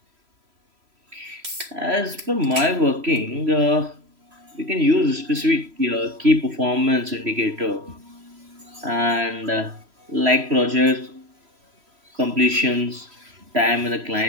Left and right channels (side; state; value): left; late; 3.0 ms